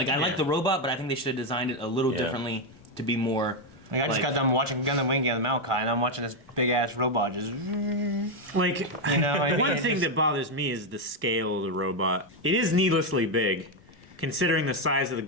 I like the robot, but I think they should have designed it a little Yeah. differently to be more. Like, I just got done watching Gundam Wing and Maokai, and I'm watching this big ass robot just. Like, You know, I mean, one it's thing just- that bothers me is the scale of the robot. It is needlessly big, considering the size of the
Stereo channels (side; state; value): both; normal; correlation 0.04